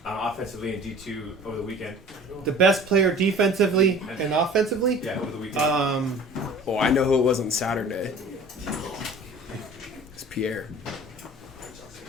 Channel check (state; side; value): normal; both; correlation 0.45